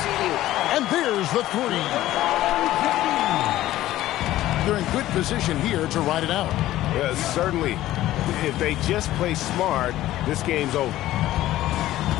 And there's the three. They're in good position here to ride it out. Yeah, certainly. If they just play smart, this game's over.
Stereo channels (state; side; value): quieter; right; 14.7 dB